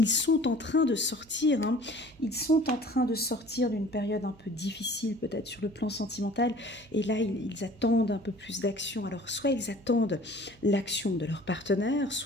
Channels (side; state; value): right; noise; hum, 26 dB below the sound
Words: sont en train de sortir. Hein. Ils sont en train de sortir d'une période un peu difficile, peut-être sur le plan sentimental. Et là, ils attendent un peu plus d'action. Alors, soit ils attendent l'action de leur partenaire,